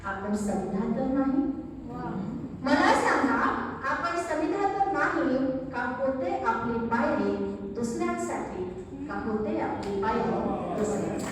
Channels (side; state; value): both; identical; correlation 1.00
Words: आपण समिधा तर नाही. मला सांगा आपण समिधा तर नाही. का होते आपली पायरी दुसऱ्यांसाठी. का होते आपली पायरी